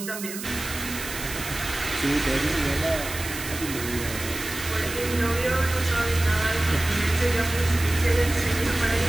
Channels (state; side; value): noise; right; hiss, 9 dB below the sound